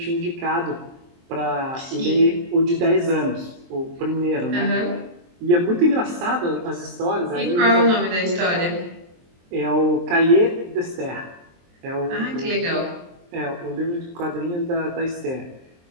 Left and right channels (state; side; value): late; left; 23 ms